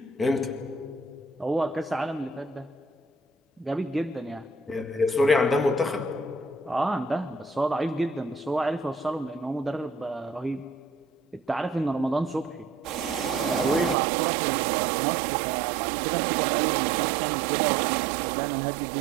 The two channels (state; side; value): drops out; left; at 14.0 s